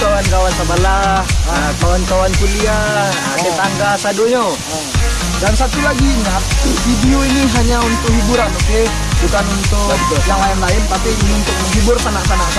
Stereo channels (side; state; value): both; identical; correlation 1.00